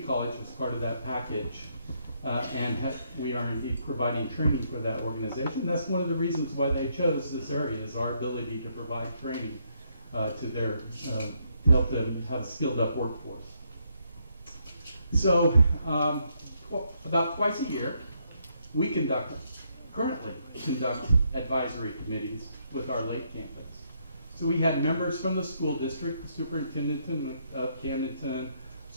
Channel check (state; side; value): inverted; both; correlation -0.75